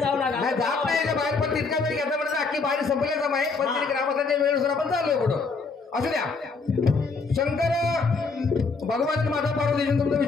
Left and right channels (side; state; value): right; quieter; 4.4 dB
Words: जाऊ नका. नाही जात नाही याच्या बाहेर, पण तितका वेळ घेतला म्हणजे अख्खी बाहेर संपले जमा आहे. पण तरी ग्रामस्थांच्या वेळेनुसार आपण चाललोय पुढं. असू द्या. शंकर भगवान माता पार्वती तुमचं